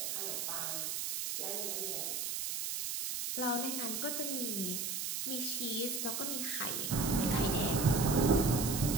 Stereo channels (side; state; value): right; noise; hiss, 2 dB below the sound